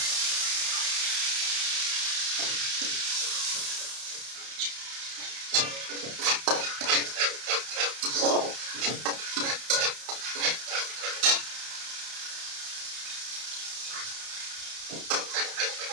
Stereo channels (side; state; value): left; late; 31 ms